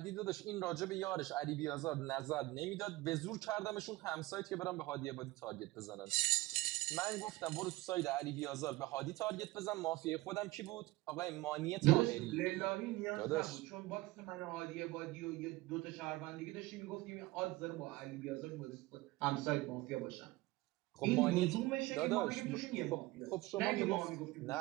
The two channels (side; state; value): left; quieter; 20.0 dB